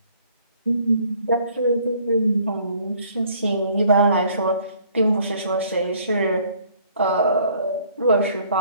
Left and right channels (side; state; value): both; inverted; correlation -0.60